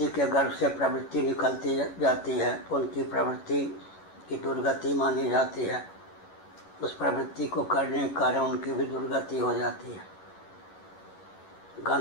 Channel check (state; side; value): late; right; 11 ms